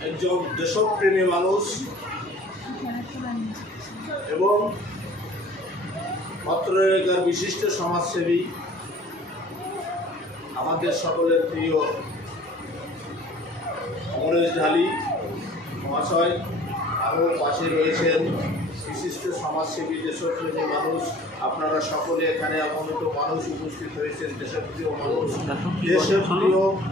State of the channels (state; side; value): normal; both; correlation 0.49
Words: একজন দেশপ্রেমী মানুষ এবং পত্রলেখার বিশিষ্ট সমাজসেবী আমাদের সকলের প্রিয় অমরেশ ঢালি মহাশয়, আরও পাশে রয়েছেন বিশিষ্ট সমাজসেবী দেশপ্রেমী মানুষ। আপনারা সকলে এখানে আগমিত মানুষ উপস্থিত হয়েছেন, দেশপ্রিয় মানুষ। দেশের প্রিয়